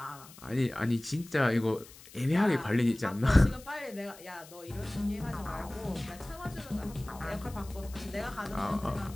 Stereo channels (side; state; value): left; noise; hiss, 20 dB below the sound